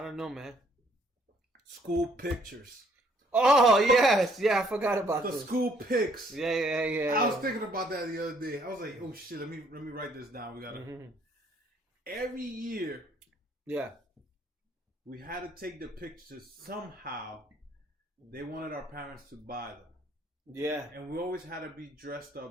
don't know, man. School pictures. Oh yes, yeah. I forgot about The this. school pics. Yeah. I was thinking about that the other day. I was like, oh shit, let me write this down. We gotta every year. Yeah. We had to take the pictures somehow. They wanted our parents to buy them. Yeah. And we always had to be dressed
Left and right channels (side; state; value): both; normal; correlation 0.65